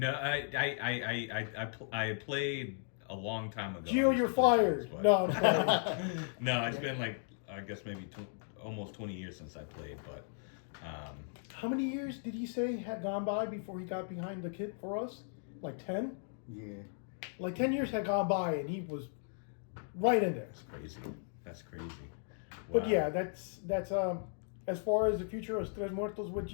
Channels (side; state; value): right; silent; digital silence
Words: I played a long time ago. Geo, you're fired. No, I'm sorry. No, it's been I guess maybe almost 20 years since I played, but. How many years did he say had gone by before he got behind the kit for us? Like 10? Yeah. Like 10 years had gone by and he was right in there. That's crazy. Wow. But yeah, that's as far as the future of Trez Muertoz with